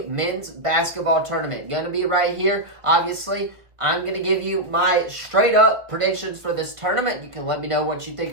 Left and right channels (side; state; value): left; late; 1.5 ms